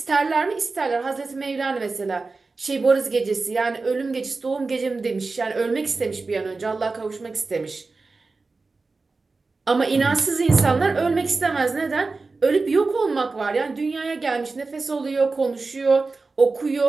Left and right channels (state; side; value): quieter; left; 3.9 dB